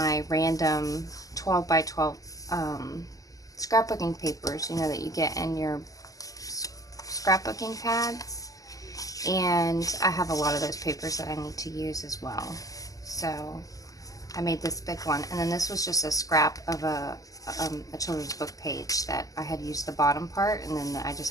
random 12 by 12 scrapbooking papers, you know, that you get in your scrapbooking pads. And I have a lot of those papers that I need to use as well. So I made this big one. And then this was just a scrap of a children's book page that I had used the bottom part, and then I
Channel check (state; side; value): late; right; 0.17 ms